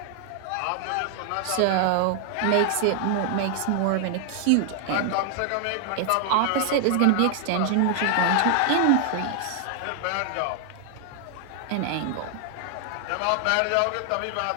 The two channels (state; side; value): different; both; correlation 0.00